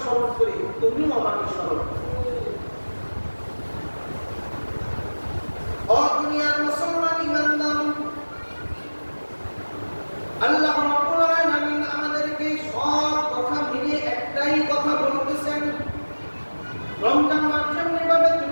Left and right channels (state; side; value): inverted; both; correlation -1.00